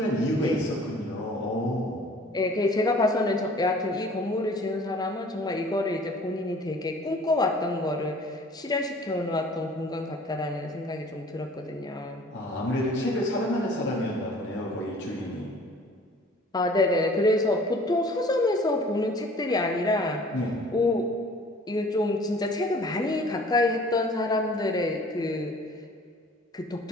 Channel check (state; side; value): normal; both; correlation 0.50